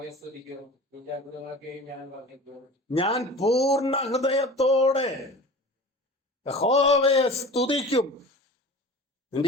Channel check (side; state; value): both; normal; correlation 0.38